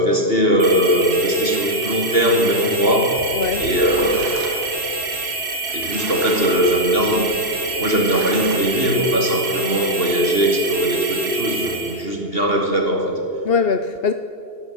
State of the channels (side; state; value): right; late; 2.8 ms